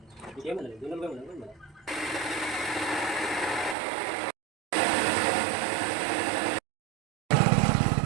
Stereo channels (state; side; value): drops out; left; at 3.8 s